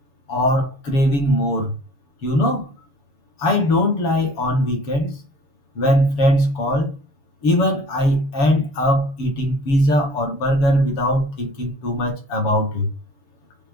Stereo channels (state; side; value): late; right; 7.2 ms